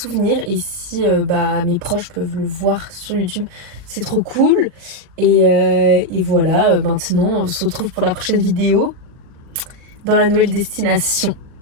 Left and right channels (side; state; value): left; late; 39 ms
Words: Et si bah mes proches peuvent le voir sur YouTube, c'est trop cool. Et voilà, maintenant on se retrouve pour la prochaine vidéo dans la nouvelle destination.